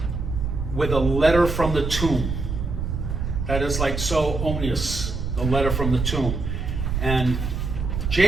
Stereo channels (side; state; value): right; noise; rumble, 3 dB below the sound